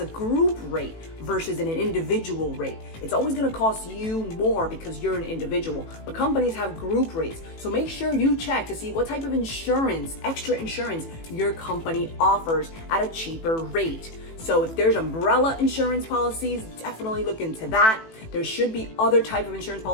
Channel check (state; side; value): late; right; 18 ms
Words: a group rate versus an individual rate. It's always going to cost you more because you're an individual, but companies have group rates. So make sure you check to see what type of insurance, extra insurance, your company offers at a cheaper rate. So if there's umbrella insurance policies, definitely look into that. There should be other type of insurance